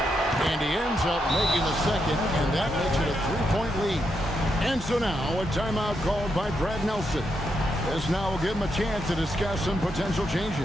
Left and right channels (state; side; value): normal; both; correlation 0.82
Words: And he ends up making the second, and that makes it a 3-point lead. And so now, a timeout called by Brad Nelson. This now will give him a chance to discuss some potential